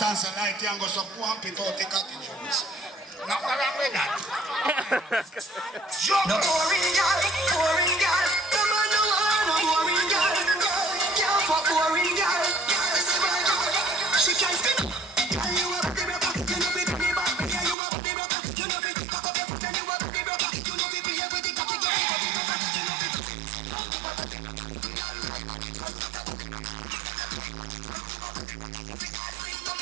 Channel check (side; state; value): left; drops out; at 17.8 s